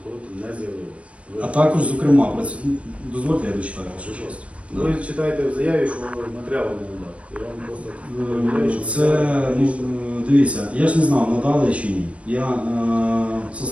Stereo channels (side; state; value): left; late; 0.063 ms